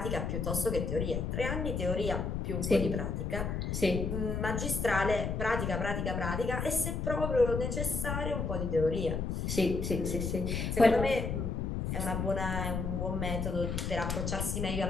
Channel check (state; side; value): noise; left; rumble, 1 dB below the sound